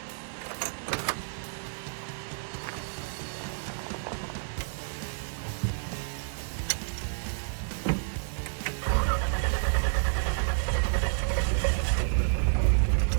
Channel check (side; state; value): left; silent; 58 dB below the other